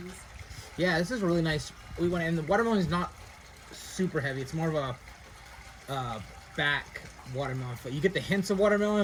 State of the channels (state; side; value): identical; both; correlation 1.00